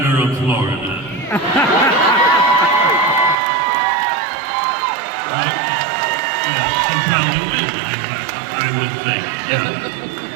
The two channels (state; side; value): drops out; left; at 3.4 s